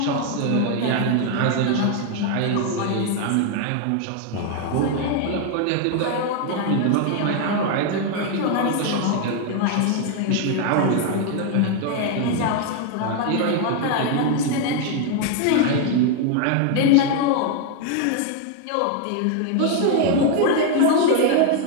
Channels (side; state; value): both; different; correlation 0.01